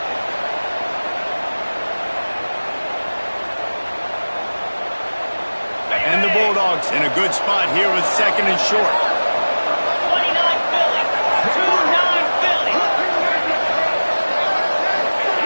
And the Bulldogs in a good spot here with second and short. 29 Philly. 29 Philly.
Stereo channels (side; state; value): both; inverted; correlation -1.00